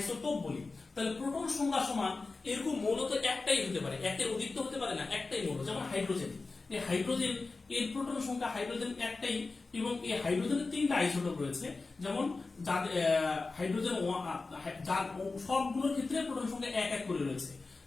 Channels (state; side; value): quieter; right; 3.8 dB